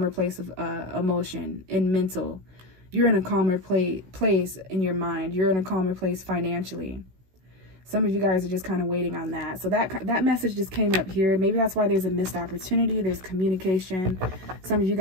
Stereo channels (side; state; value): left; late; 16 ms